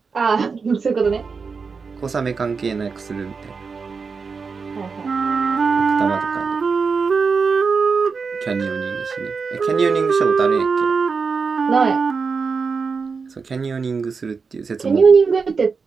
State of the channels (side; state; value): left; quieter; 5.1 dB